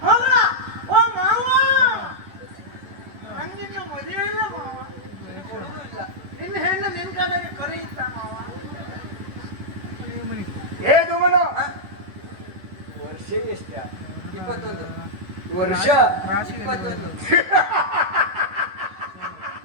ನಂಗಿನ್ನು ಮದುವೆ ಇಲ್ಲ ಮಾವ. ಕೊಡುದು ಇಲ್ಲ. ನಿನ್ನ ಹೆಣ್ಣು ನಿನ್ ಕಡೆಗೆ ಕರೆಯುತ್ತ ಮಾವ. ಏ ದುಮನ, ಹಾ? ವರ್ಷ ಎಷ್ಟ? 21. ವರ್ಷ 21.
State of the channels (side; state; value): left; late; 10 ms